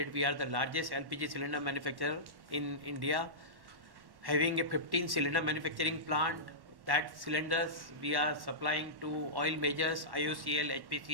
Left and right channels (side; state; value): left; late; 1.1 ms